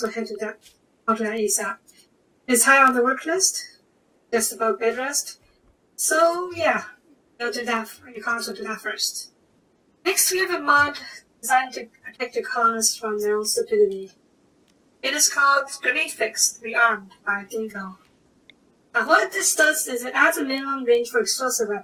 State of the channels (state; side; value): identical; both; correlation 1.00